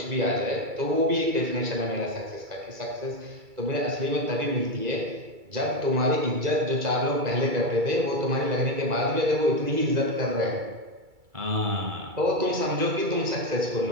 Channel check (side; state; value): left; late; 2.3 ms